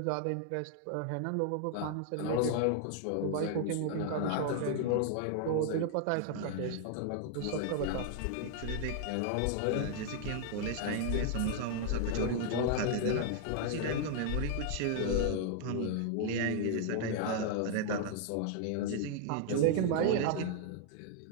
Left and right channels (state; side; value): different; both; correlation 0.00